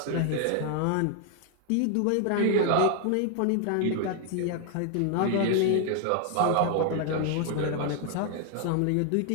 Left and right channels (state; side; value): different; both; correlation 0.00